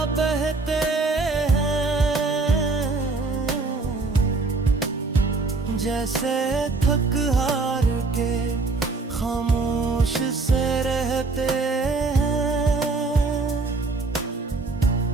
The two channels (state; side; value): quieter; left; 3.8 dB